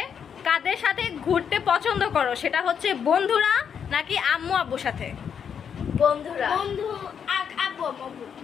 কাদের সাথে ঘুরতে পছন্দ করো, সেটা হচ্ছে বন্ধুরা নাকি আম্মু আব্বুর সাথে? বন্ধুরা। বন্ধু, আব্বু আম্মু।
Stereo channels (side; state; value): right; quieter; 7.5 dB